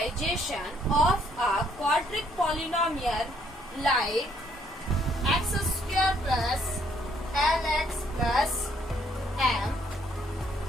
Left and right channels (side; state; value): both; normal; correlation 0.68